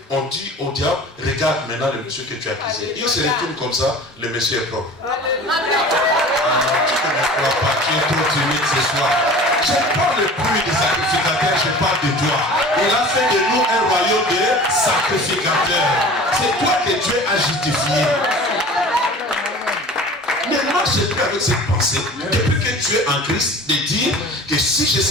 on dit au diable, regarde maintenant le monsieur que tu as accusé. Il se retourne comme ça, le monsieur est propre. Tu ne me crois pas, tu es trop timide ce soir. Je ne parle plus des sacrificateurs, je parle de toi. Il a fait de nous un royaume de sacrificateurs. C'est toi que Dieu a justifié. Maintenant, j'ai pris avec cette pensée, depuis que tu es en Christ, de dire que si j'ai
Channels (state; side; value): normal; both; correlation 0.41